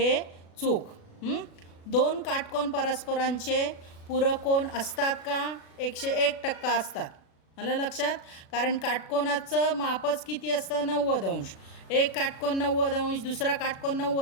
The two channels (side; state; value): right; late; 36 ms